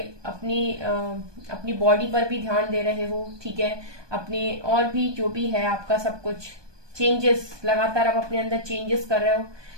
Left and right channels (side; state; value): left; late; 1.2 ms